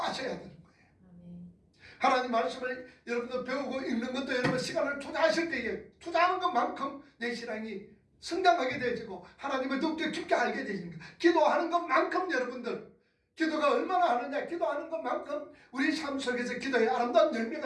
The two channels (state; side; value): identical; both; correlation 1.00